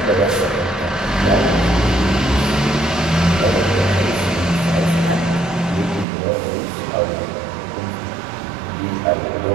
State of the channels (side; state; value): left; drops out; at 6.1 s